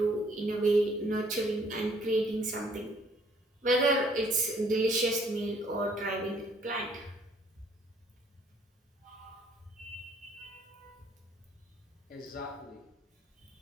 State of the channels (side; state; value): both; normal; correlation 0.62